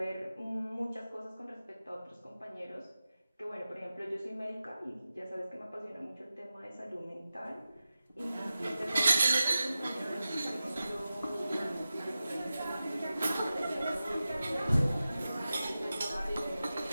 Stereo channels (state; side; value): inverted; both; correlation -0.94